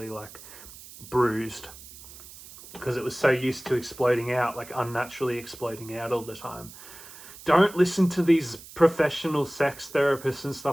like bruised. Because it was so used to exploding out, like unnaturally exploding out all the time. Don't listen to these professional sex therapists and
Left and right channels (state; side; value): noise; right; hiss, 17 dB below the sound